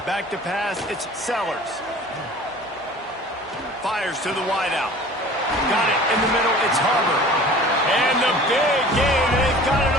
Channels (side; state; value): both; normal; correlation 0.44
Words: Back to pass, it's Sellers. Fires to the wideout. Got it in the middle, it's Harbor. And the big gain, they've got it